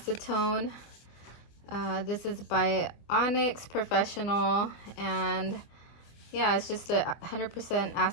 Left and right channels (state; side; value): late; right; 24 ms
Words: This is by Onyx Professional, and yeah, it's just a 100%